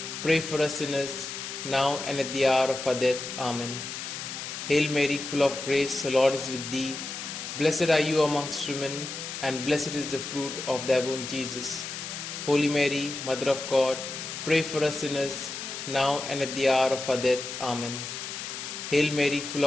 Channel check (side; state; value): left; noise; hiss, 7 dB below the sound